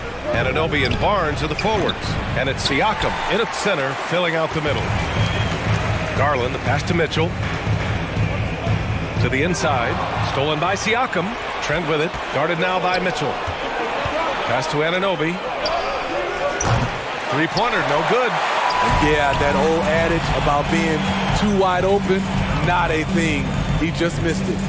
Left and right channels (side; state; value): both; identical; correlation 1.00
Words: Anunoby and Barnes are the forwards. And it's Siakam in at center, filling out the middle. Garland, the pass to Mitchell. To the inside. Stolen by Siakam. Trent with it. Guarded now by Mitchell. Pass to Anunoby. Three-pointer, no good. Yeah, that old adage about being too wide open, not a thing. He just missed it.